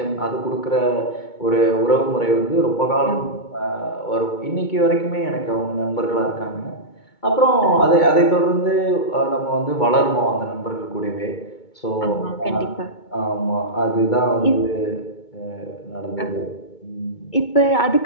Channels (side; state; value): right; late; 2.2 ms